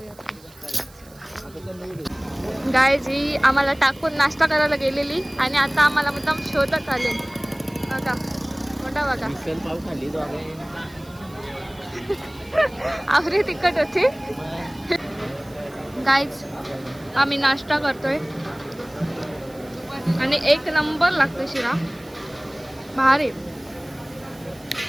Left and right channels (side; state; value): right; noise; hiss, 25 dB below the sound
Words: गाईज ही आम्हाला टाकून नाश्ता करायला गेलेली आणि आता आम्हाला मुद्दाम शोधत आले. बघा मोठा बघा, आवरी तिखट होती. गाईज आम्ही नाश्ता करतोय आणि एक नंबर लागतो शिरा. भारी